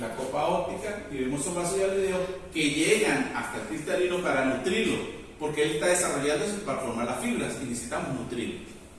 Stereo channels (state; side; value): identical; both; correlation 1.00